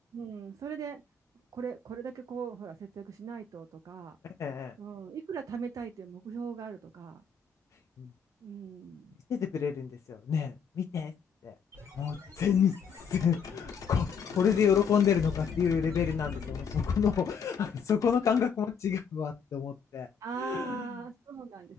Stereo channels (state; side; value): quieter; right; 6.1 dB